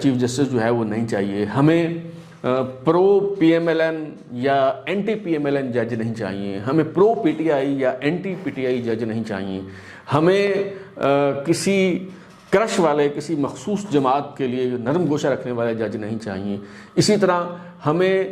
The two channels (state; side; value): identical; both; correlation 1.00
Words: جسٹس جو ہے وہ نہیں چاہیے، ہمیں pro P M L N یا anti P M L N جج نہیں چاہیے، ہمیں پرو پی ٹی آئی یا اینٹی پی ٹی آئی جج نہیں چاہیے، ہمیں کسی کرش والے کسی مخصوص جماعت کے لیے نرم گوشہ رکھنے والے جج نہیں چاہیے۔ اسی طرح